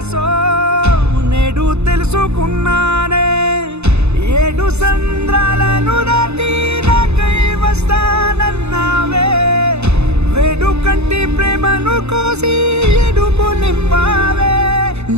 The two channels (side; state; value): left; late; 0.81 ms